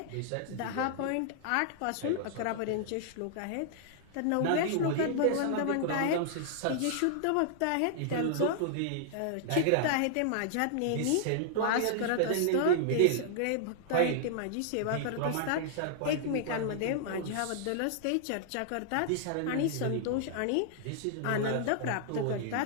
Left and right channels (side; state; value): both; different; correlation -0.01